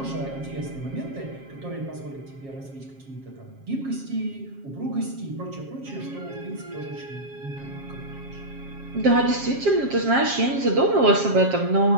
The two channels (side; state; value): left; late; 7.4 ms